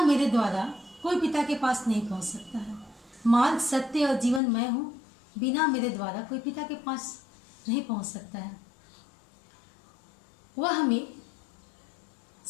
मेरे द्वारा कोई पिता के पास नहीं पहुँच सकता है। मार्ग सत्य और जीवन मैं हूँ, बिना मेरे द्वारा कोई पिता के पास नहीं पहुँच सकता है। वह हमें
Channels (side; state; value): right; drops out; at 4.4 s